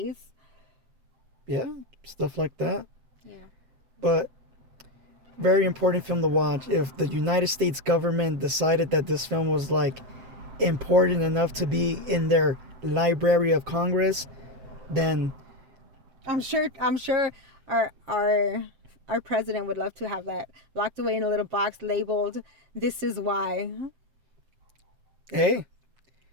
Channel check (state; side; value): late; left; 7.8 ms